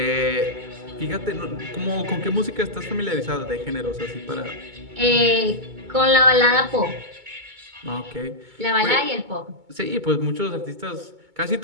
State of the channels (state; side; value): late; left; 2.2 ms